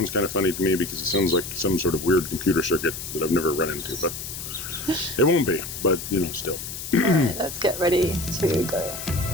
kind of funny to me because it sounds like some sort of weird computer circuit that I've never run into, but it won't be, but still. Alright, let's get ready to go.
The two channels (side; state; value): left; noise; hiss, 8 dB below the sound